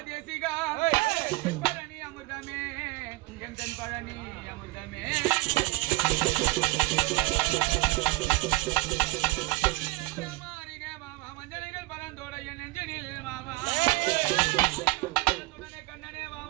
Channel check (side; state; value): left; quieter; 21.6 dB